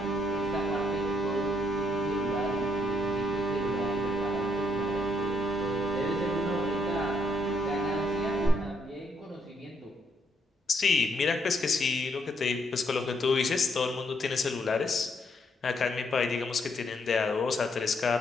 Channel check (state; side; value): normal; both; correlation 0.72